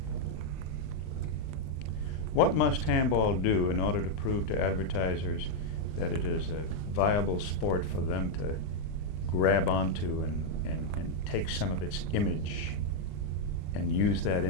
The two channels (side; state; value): right; late; 39 ms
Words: What must handball do in order to prove to advertisers that it is a viable sport for them to grab onto and take some of its image and use that